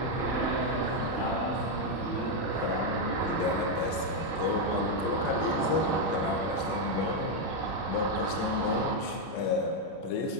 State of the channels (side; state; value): right; late; 31 ms